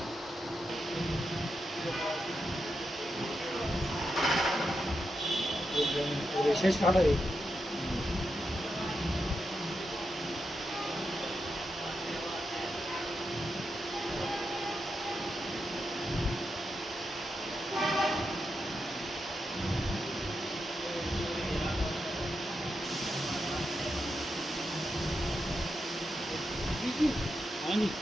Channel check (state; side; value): normal; both; correlation 0.86